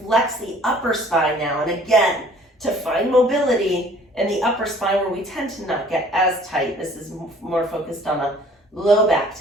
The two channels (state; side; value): normal; both; correlation 0.54